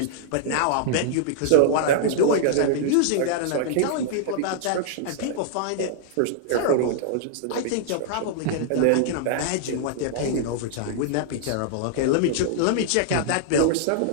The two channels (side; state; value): both; different; correlation -0.01